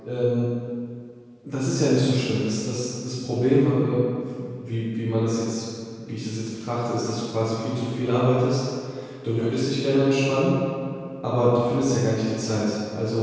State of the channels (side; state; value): both; identical; correlation 1.00